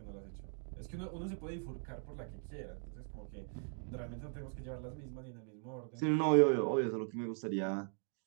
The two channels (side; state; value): left; silent; 51 dB below the other